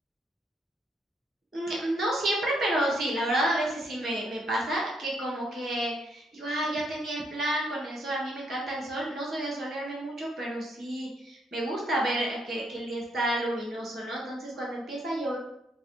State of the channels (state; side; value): normal; both; correlation 0.72